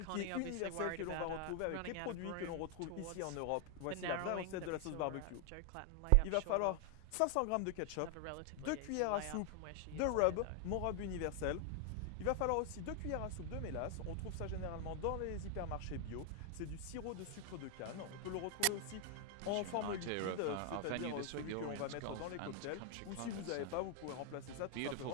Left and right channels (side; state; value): both; different; correlation 0.00